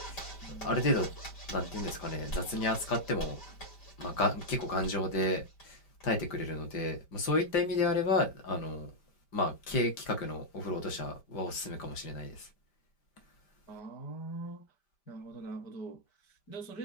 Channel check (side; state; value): right; late; 5.1 ms